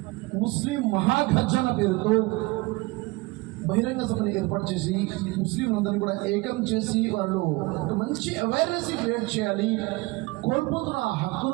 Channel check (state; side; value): quieter; left; 23.0 dB